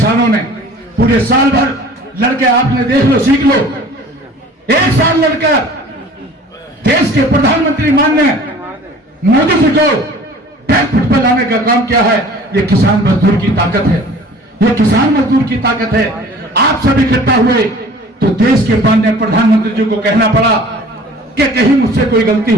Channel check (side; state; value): both; normal; correlation 0.47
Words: ने पूरे साल भर लड़के, आपने देख लो, सीख लो, 1 साल लड़कर देश के प्रधानमंत्री माननीय मोदी जी को बैकफुट पर लाने का काम किया है। ये किसान मजदूर की ताकत है, ये किसान मजदूर की ताकत है। आप सब इकट्ठा हुए तो देश के माननीय प्रधानमंत्री जी को कहना पड़ा कि कहीं मुझसे कोई गलती